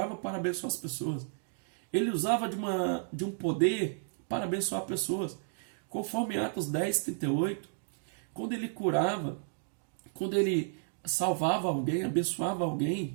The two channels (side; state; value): left; silent; digital silence